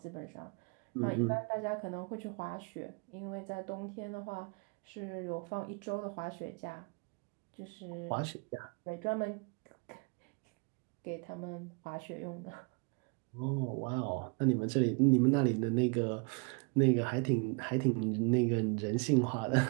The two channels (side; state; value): left; quieter; 34.6 dB